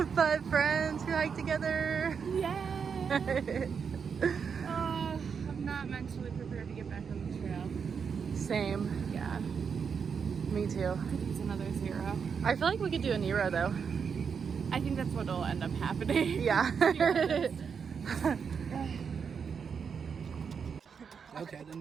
5 friends who hike together. Yay! I'm not mentally prepared to get back on the trail. Same. Yeah. Me too. I could use another 0. I feel like we could do a Nero though. I think that's what will end up happening. Yeah. Okay, then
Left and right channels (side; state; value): left; quieter; 6.4 dB